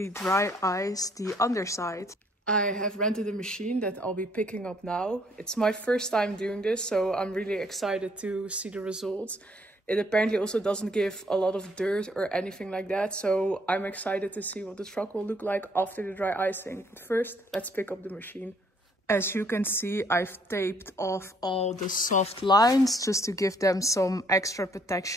dry ice the underside. I have rented a machine that I'll be picking up now. It's my first time doing this, so I'm really excited to see the results. It apparently also doesn't give a lot of dirt or anything like that, so I'm excited to see what the truck will look like after the dry icing. But first, let's pick up the machine. As you can see, I've taped off all the soft lines just to give them some extra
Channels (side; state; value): both; normal; correlation 0.66